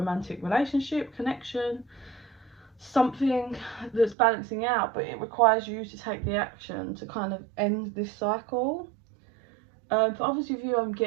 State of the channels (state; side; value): drops out; left; at 4.2 s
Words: relationship, connection, something that's balancing out, but it requires you to take the action to kind of end this cycle. For others of you, I'm